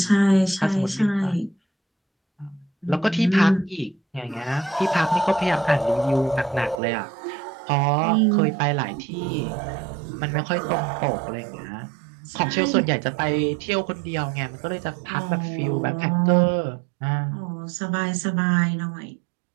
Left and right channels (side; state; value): left; drops out; at 6.8 s